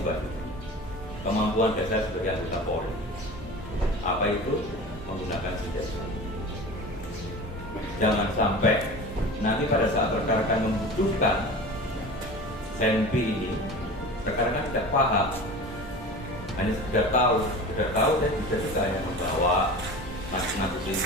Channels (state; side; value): normal; both; correlation 0.35